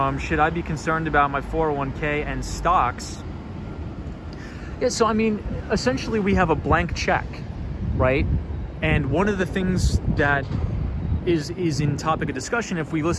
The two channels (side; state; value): both; identical; correlation 1.00